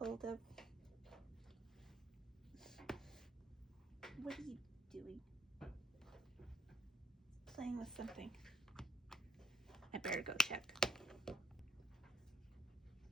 of. What are you doing? Playing with something. I better go check.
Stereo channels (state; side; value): normal; both; correlation 0.65